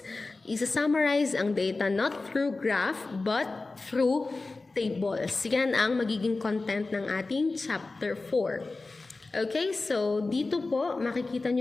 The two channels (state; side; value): quieter; right; 3.5 dB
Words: Isa-summarize ang data not through graph but through tables. Yan ang magiging content ng ating chapter 4. Okay, so dito po makikita